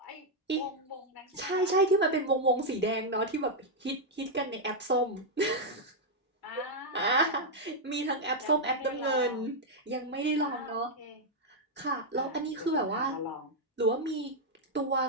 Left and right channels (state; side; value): normal; both; correlation -0.01